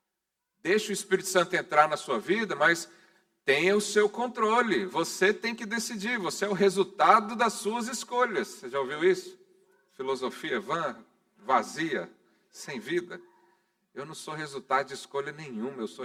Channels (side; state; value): both; identical; correlation 1.00